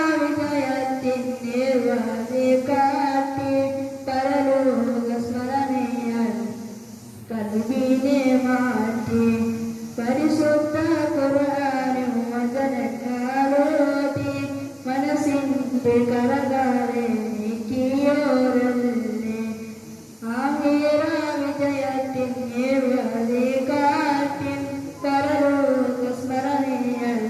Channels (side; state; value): both; identical; correlation 1.00